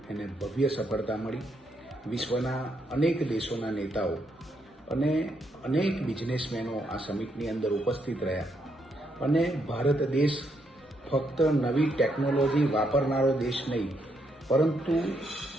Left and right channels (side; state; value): both; normal; correlation 0.77